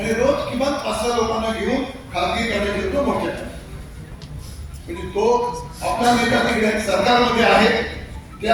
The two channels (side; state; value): both; identical; correlation 1.00